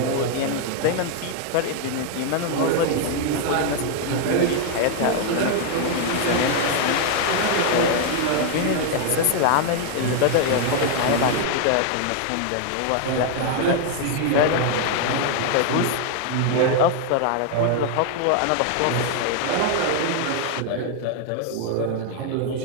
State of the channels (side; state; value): both; different; correlation 0.00